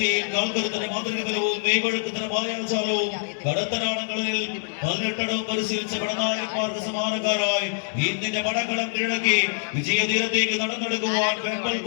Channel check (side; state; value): right; silent; 62 dB below the other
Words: കാൽക്കരുത്തിന് മാതൃക ബലവും മെയ്വഴക്കത്തിന് മായാജാലവും കടത്തനാടങ്ങളിൽ 18 പരിശീലിച്ച പടനായകന്മാർക്ക് സമാനക്കാരായി ഇന്നിന്റെ പടക്കളം കിഴക്കി വിജയതീരത്തേക്ക് നടന്നെടുക്കുവാൻ വെമ്പൽ